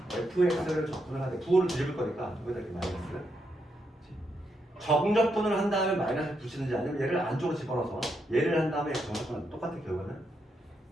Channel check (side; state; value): both; normal; correlation 0.80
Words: fx를 접근을 하되 부호를 뒤집을 거니까 여기다 이렇게 마이너스 정적분을 한 다음에 마이너스를 붙이는지 아니면 얘를 안쪽으로 집어넣어서 얘를 한 다음에 정적분은 똑같은 결과는